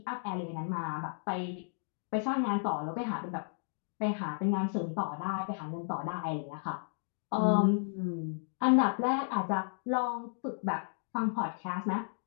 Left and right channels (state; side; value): silent; right; digital silence